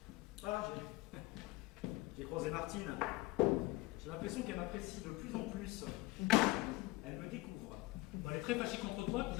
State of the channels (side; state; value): right; quieter; 20.5 dB